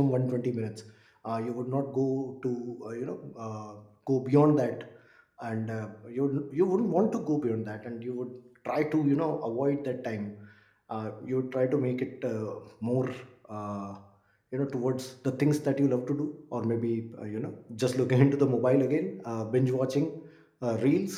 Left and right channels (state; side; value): identical; both; correlation 1.00